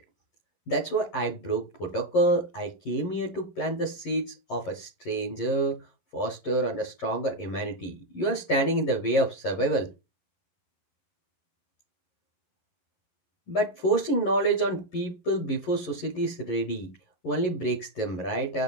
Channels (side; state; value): right; late; 11 ms